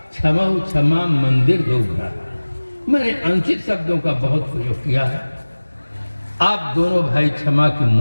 क्षमहु क्षमा मंदिर दो भ्राता। मैंने अनुचित शब्दों का बहुत प्रयोग किया है। आप दोनों भाई क्षमा की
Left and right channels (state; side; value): inverted; both; correlation -1.00